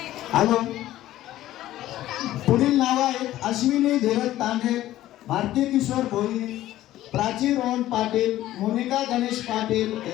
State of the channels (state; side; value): quieter; right; 14.3 dB